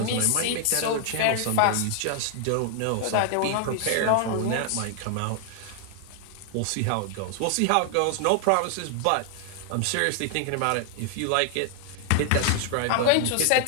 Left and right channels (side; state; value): both; different; correlation 0.00